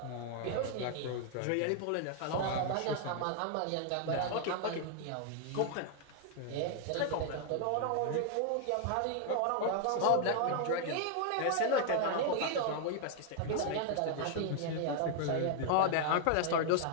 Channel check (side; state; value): both; different; correlation 0.00